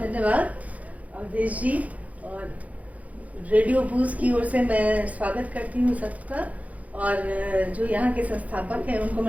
अवधेश जी, और रेडियो बूज की ओर से मैं स्वागत करती हूँ सबका, और जो यहाँ के संस्थापक हैं उनको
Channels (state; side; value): late; left; 0.070 ms